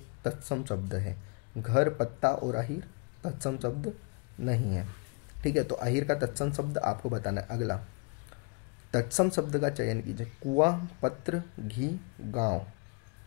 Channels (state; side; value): quieter; right; 32.3 dB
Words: तत्सम शब्द है। घर, पत्ता और अहीर तत्सम शब्द नहीं है। ठीक है, तो अहीर का तत्सम शब्द आपको बताना है। अगला तत्सम शब्द का चयन कीजिए। कुआं, पत्र, घी, गांव।